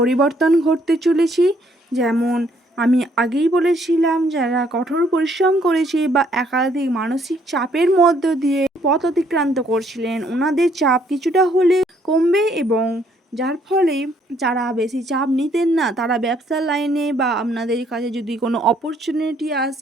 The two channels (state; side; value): normal; both; correlation 0.67